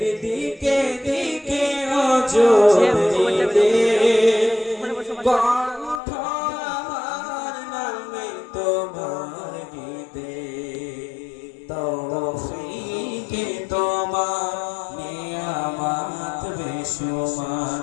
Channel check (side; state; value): right; drops out; at 6.0 s